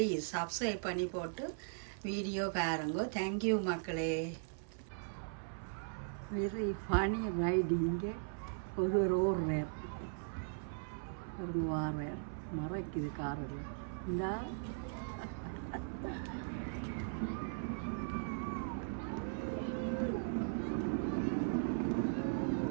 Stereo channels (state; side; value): silent; left; 52 dB below the other